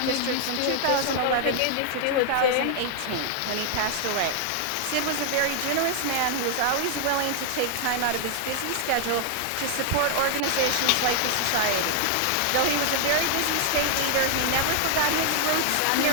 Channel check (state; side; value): different; both; correlation 0.00